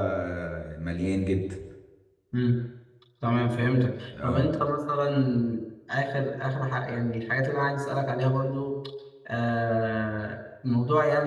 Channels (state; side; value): identical; both; correlation 1.00